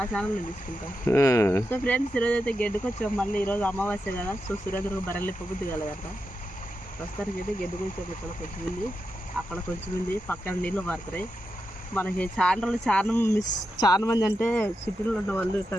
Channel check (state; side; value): normal; both; correlation 0.88